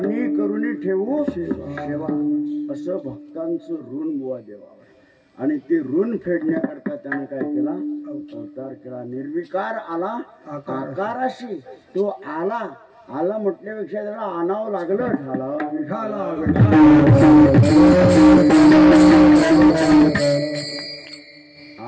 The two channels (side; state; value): both; identical; correlation 1.00